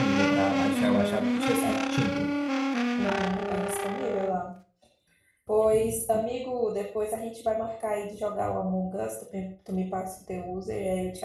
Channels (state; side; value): identical; both; correlation 1.00